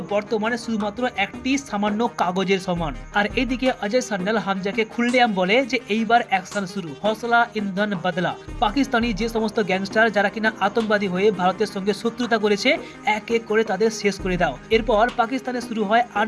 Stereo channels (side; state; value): both; identical; correlation 1.00